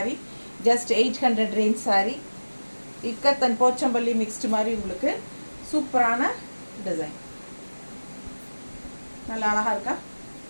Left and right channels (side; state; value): both; inverted; correlation -1.00